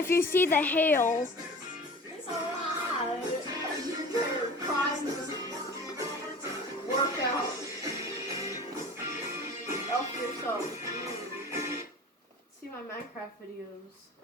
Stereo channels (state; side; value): normal; both; correlation 0.39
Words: you see the hail. It's alright. Workout. Help yourself. See my Minecraft videos.